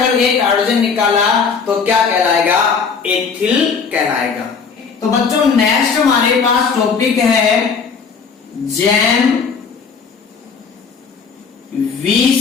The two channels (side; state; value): right; quieter; 5.6 dB